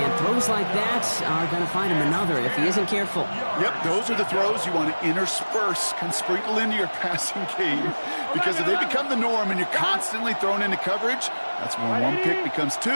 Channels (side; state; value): both; inverted; correlation -1.00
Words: throws like that are going to find him another if he isn't careful. Yep, those are the throws you want to intersperse, can sprinkle into your passing game. Because if they become the norm and you're constantly thrown into coverage, that's when one pick becomes